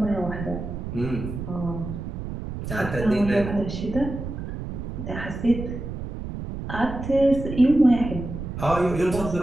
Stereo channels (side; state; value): right; noise; rumble, 7 dB below the sound